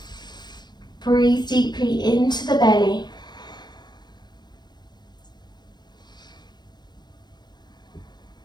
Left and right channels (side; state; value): right; late; 0.21 ms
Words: Breathe deeply into the belly.